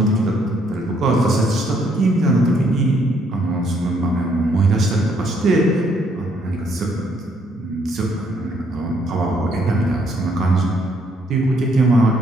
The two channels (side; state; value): both; normal; correlation 0.69